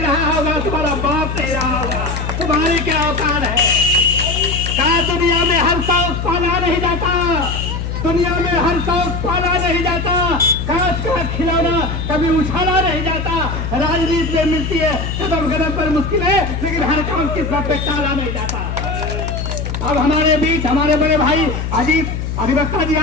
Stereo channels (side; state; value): left; noise; hum, 4 dB below the sound